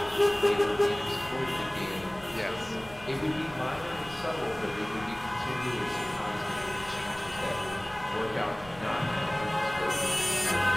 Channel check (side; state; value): left; noise; rumble, 20 dB below the sound